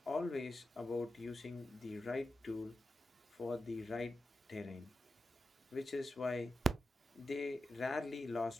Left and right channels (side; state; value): both; normal; correlation 0.90